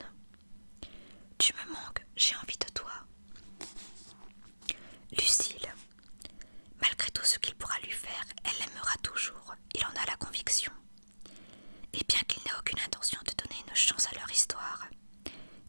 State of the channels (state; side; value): inverted; both; correlation -1.00